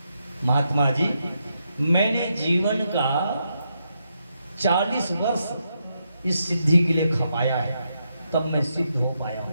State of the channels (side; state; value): both; inverted; correlation -0.82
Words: महात्मा जी, मैंने जीवन का 40 वर्ष इस सिद्धि के लिए खपाया है, तब मैं सिद्ध हो पाया